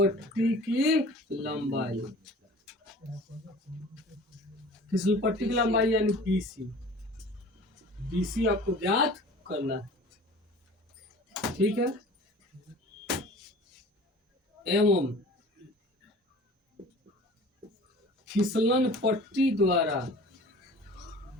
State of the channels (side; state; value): both; normal; correlation 0.43